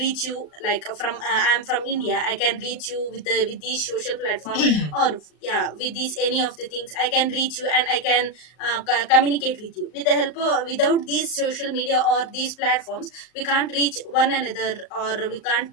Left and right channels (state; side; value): late; right; 38 ms